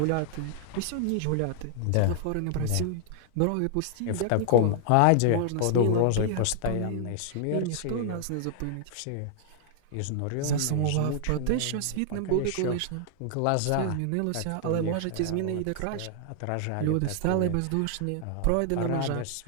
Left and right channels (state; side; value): different; both; correlation 0.00